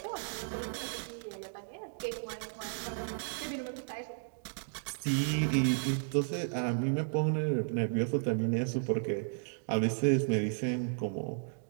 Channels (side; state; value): left; silent; digital silence